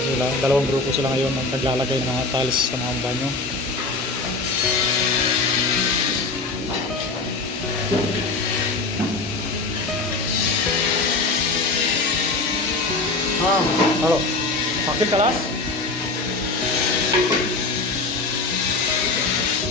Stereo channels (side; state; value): right; quieter; 3.5 dB